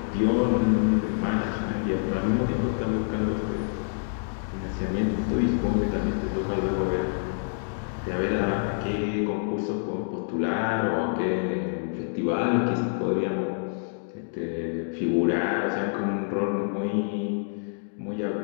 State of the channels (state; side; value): silent; right; digital silence